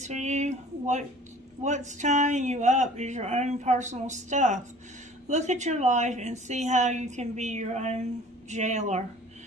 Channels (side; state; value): both; normal; correlation 0.48